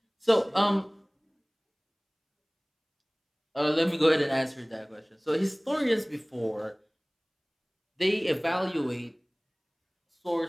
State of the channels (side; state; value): both; identical; correlation 1.00